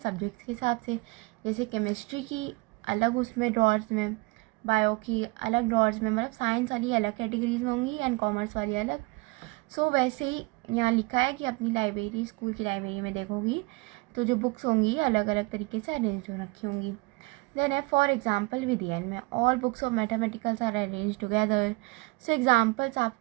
के हिसाब से। जैसे केमिस्ट्री की अलग उसमें ड्रॉर्स में, बायो की अलग ड्रॉर्स में, मतलब साइंस वाली अलग कैटेगरीज में होंगी एंड कॉमर्स वाली अलग। वैसे ही यहाँ लिखा है कि अपनी लाइब्रेरी, स्कूल की लाइब्रेरी में देखोगी तो जो बुक्स होंगी अलग अलग तरीके से अरेंज हो रखी होंगी। देन है फॉर एग्जाम्पल विद एन में all books of mathematicals are arrange together. Examples आप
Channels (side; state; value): left; quieter; 25.9 dB